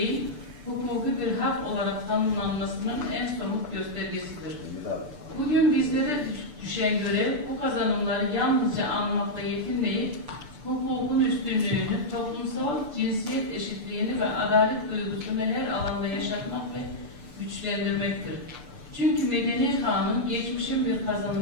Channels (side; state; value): left; late; 6.8 ms